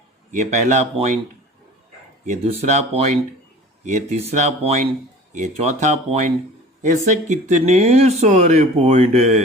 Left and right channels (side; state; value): both; normal; correlation 0.43